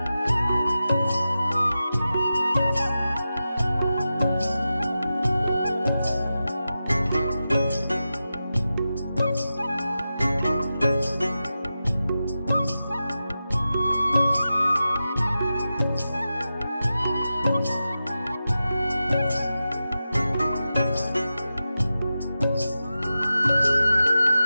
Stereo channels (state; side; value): inverted; both; correlation -0.92